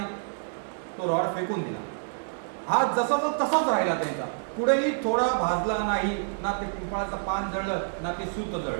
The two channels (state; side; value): silent; left; 59 dB below the other